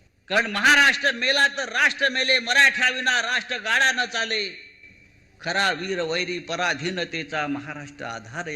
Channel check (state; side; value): identical; both; correlation 1.00